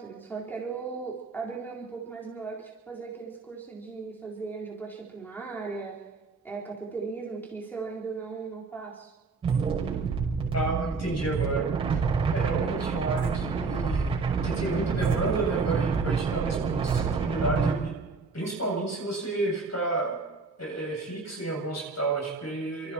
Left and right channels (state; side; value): quieter; left; 4.2 dB